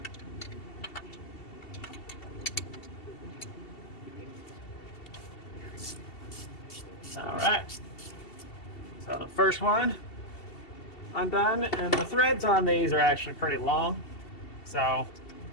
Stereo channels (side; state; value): right; late; 2.7 ms